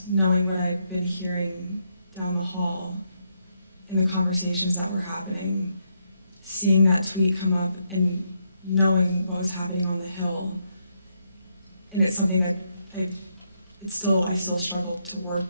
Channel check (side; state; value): both; inverted; correlation -0.78